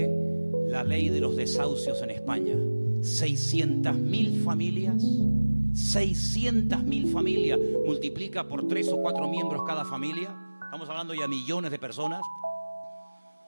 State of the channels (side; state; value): both; inverted; correlation -1.00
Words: la ley de los desahucios en España. 600.000 familias, 600.000 familias, multiplica por 3 o 4 miembros cada familia, estamos hablando ya de millones de personas,